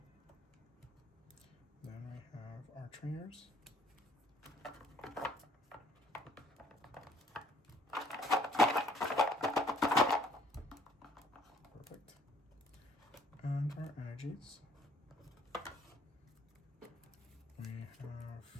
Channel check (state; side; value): normal; both; correlation 0.62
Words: Then we have our trainers. Perfect. And our energies. We have,